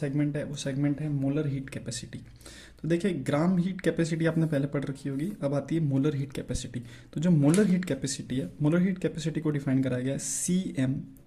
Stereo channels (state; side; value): identical; both; correlation 1.00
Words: है वो सेगमेंट है मोलर हीट कैपेसिटी। तो देखिए ग्राम हीट कैपेसिटी आपने पहले पढ़ रखी होगी, अब आती है मोलर हीट कैपेसिटी। तो जो मोलर हीट कैपेसिटी है, मोलर हीट कैपेसिटी को डिफाइन कराया गया है CM,